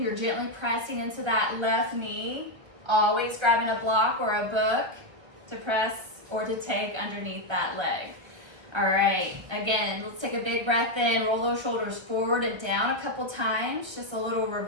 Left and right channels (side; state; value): left; late; 1.5 ms